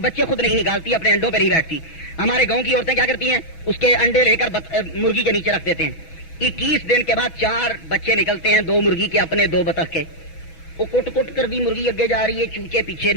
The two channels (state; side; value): late; right; 6.1 ms